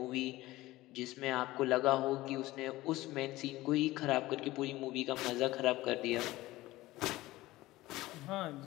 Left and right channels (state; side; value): quieter; right; 17.9 dB